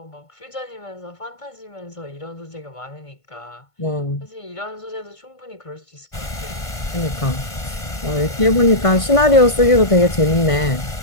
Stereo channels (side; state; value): right; late; 1.5 ms